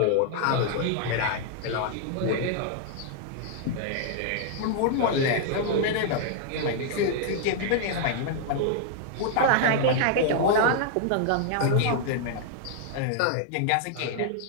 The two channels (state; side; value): different; both; correlation -0.01